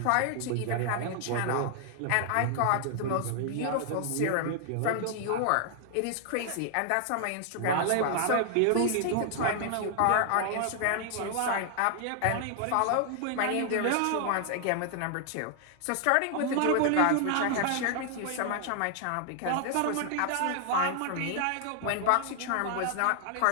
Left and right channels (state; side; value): different; both; correlation 0.00